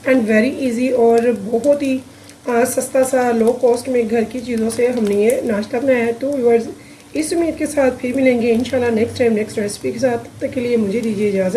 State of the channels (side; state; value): both; identical; correlation 1.00